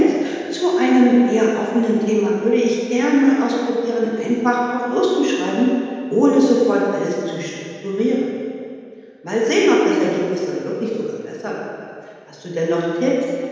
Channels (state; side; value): identical; both; correlation 1.00